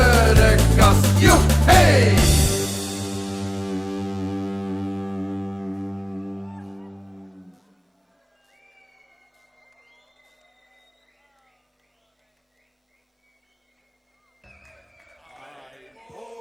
de kast. Joe, hey!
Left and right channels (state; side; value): identical; both; correlation 1.00